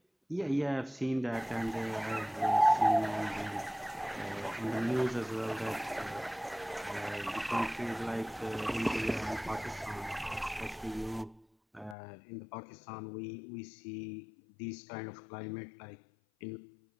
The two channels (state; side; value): drops out; right; at 12.0 s